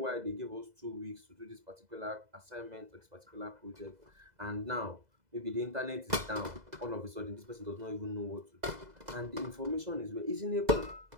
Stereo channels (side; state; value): left; late; 2.0 ms